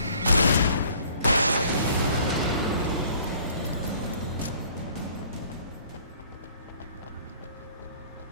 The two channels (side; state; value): both; inverted; correlation -0.55